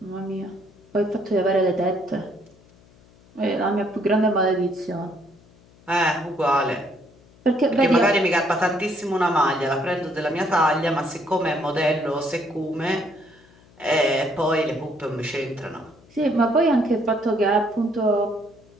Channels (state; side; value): noise; left; hum, 28 dB below the sound